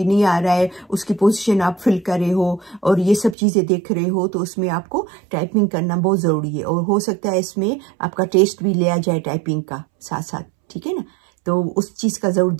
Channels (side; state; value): left; drops out; at 3.4 s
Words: नहीं आ रहा है, उसकी पोजीशन आप फिल कर रहे हो और ये सब चीज़ें देख रहे हो, तो उसमें आपको टाइपिंग करना बहुत ज़रूरी है। और हो सकता है इसमें आपका टेस्ट भी लिया जाए टाइपिंग का साथ साथ, ठीक है ना। तो उस चीज़ का ज़रूर